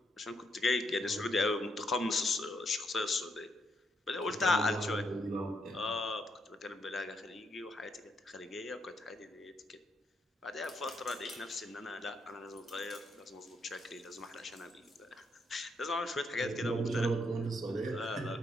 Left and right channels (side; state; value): both; normal; correlation 0.76